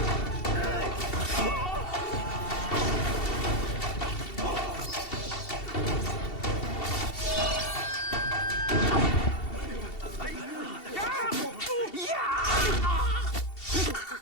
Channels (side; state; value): right; late; 2.7 ms